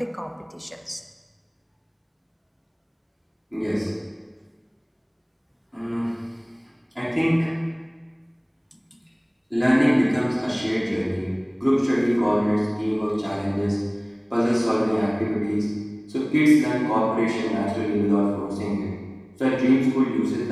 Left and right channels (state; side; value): identical; both; correlation 1.00